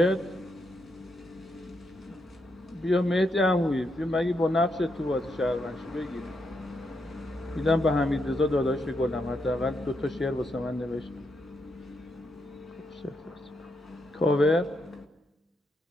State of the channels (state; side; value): normal; both; correlation 0.81